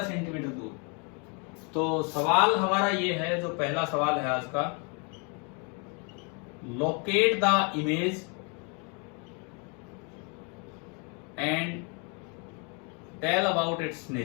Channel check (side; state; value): right; quieter; 34.8 dB